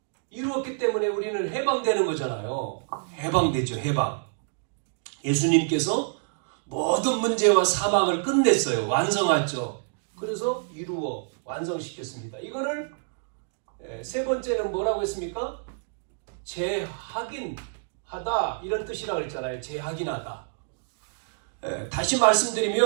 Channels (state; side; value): silent; left; digital silence